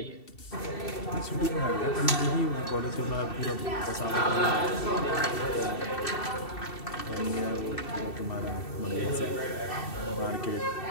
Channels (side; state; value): right; late; 2.7 ms